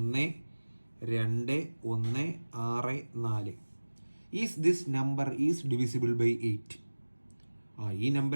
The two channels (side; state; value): both; inverted; correlation -1.00